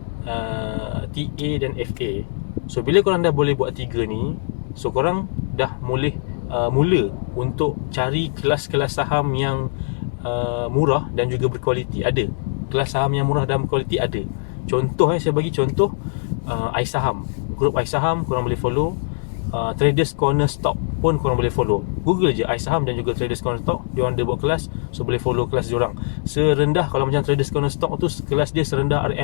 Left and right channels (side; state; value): right; silent; digital silence